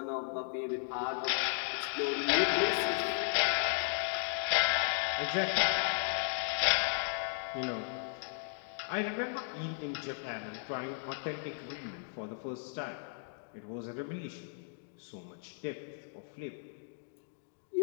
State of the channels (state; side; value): silent; right; digital silence